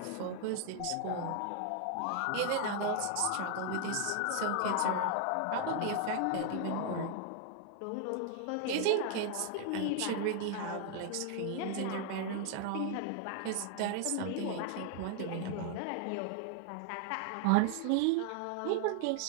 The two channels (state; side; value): different; both; correlation 0.00